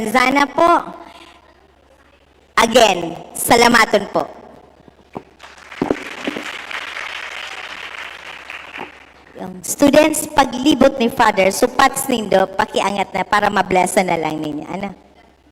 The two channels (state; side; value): identical; both; correlation 1.00